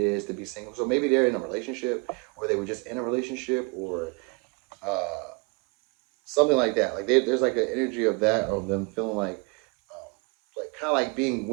to be single. So maybe they're in a relationship, or they were just in a relationship, or uh, something like that. Like there's like an energy of that, of them feeling like kind of like being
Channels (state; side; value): quieter; left; 29.7 dB